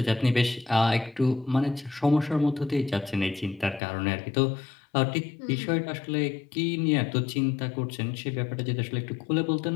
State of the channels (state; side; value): drops out; right; at 3.8 s